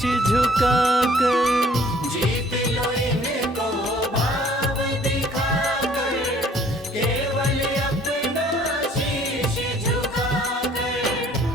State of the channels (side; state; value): both; normal; correlation 0.57